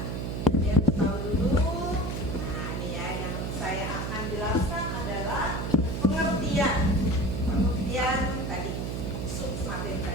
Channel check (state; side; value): noise; right; hum, 3 dB below the sound